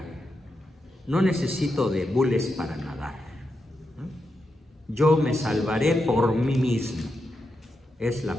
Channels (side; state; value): both; normal; correlation 0.86